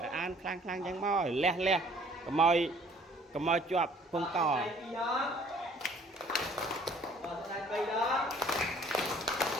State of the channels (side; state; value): both; normal; correlation 0.57